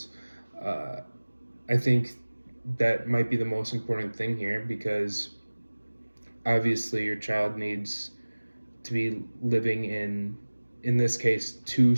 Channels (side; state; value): both; inverted; correlation -1.00